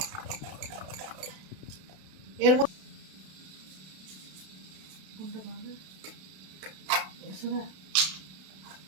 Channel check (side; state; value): left; late; 32 ms